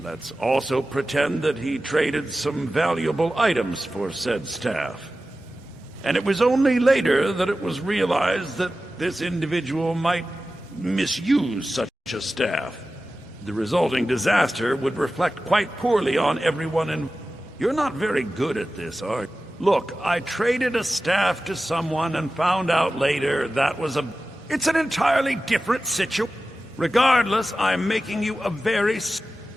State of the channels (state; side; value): normal; both; correlation 0.95